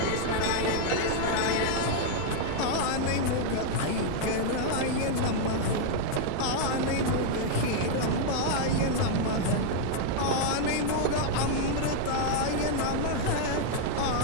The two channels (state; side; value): different; both; correlation 0.00